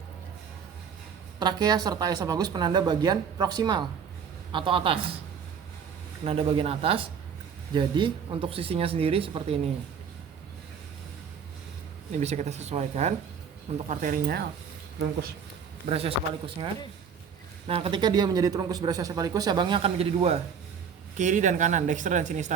trakea serta esofagus penanda bagian proksimal atau atas. Penanda bagian atas. Jadi untuk sisinya sendiri seperti ini. Ini bisa kita sesuaikan untuk arterinya, truncus brachiocephalicusnya. Nah, ketika dia menjadi truncus brachiocephalicus, cabangnya akan menjadi dua, kiri dan kanan, dexter dan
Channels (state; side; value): quieter; left; 7.0 dB